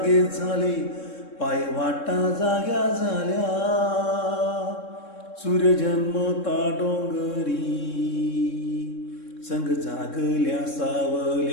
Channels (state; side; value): late; right; 3.7 ms